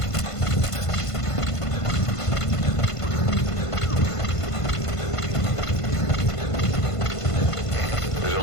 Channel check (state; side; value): late; right; 1.5 ms